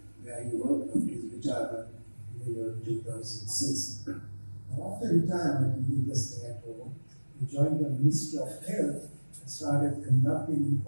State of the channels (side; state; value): both; inverted; correlation -1.00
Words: where he worked until his retirement in the year 2006. Now, after retirement, he did just stay at home. He joined the Ministry of Health and started conducting